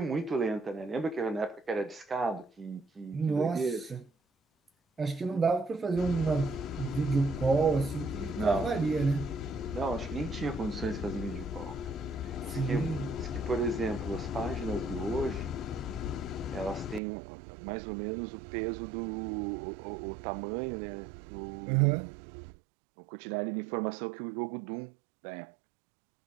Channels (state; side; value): drops out; left; at 17.0 s